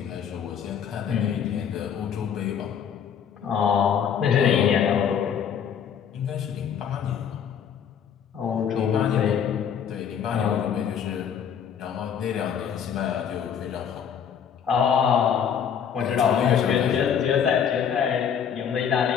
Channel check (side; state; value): right; quieter; 8.0 dB